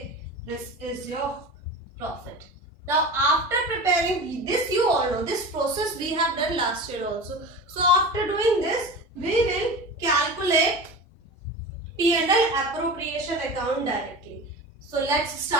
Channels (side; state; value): both; normal; correlation 0.31